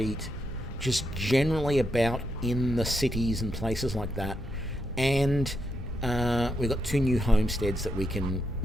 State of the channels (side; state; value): both; normal; correlation 0.82